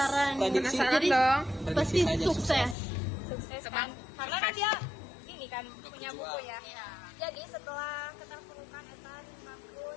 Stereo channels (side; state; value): right; drops out; at 2.8 s